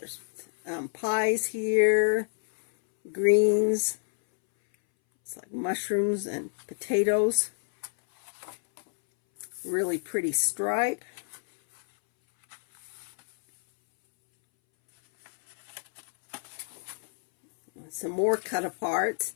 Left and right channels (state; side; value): silent; right; 59 dB below the other